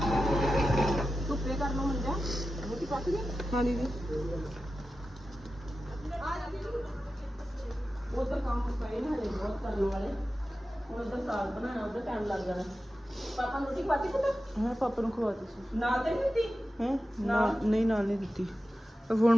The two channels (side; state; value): both; normal; correlation 0.93